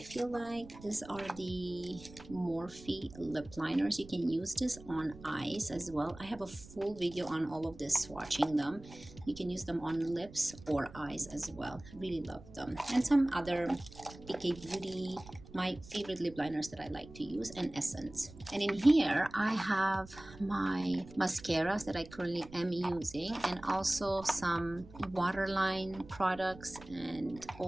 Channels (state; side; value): noise; right; rumble, 18 dB below the sound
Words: feel like. These are the Morphe lip liners. You can use this on eyes as well. I have a full video on all of this, swatching them. You can use them on lips or eyes as well. Really love them. And some other Ikea Beauty, my favorite lip liners that I like to use, and Essence. And in here I have my mascaras that I currently am using, and also some waterline products and